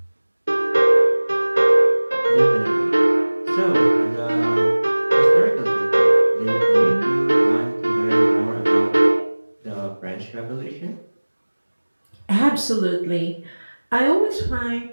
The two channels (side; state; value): both; inverted; correlation -1.00